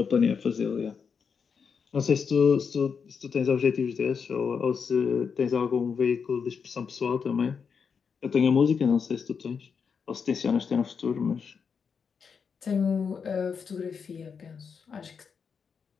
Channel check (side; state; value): right; quieter; 6.1 dB